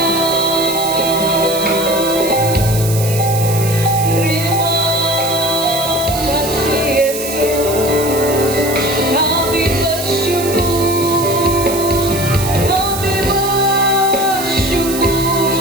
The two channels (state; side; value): noise; right; hiss, 7 dB below the sound